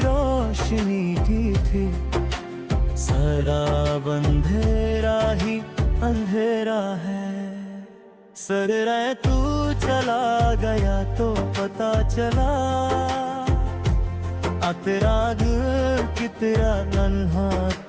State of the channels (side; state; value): both; identical; correlation 1.00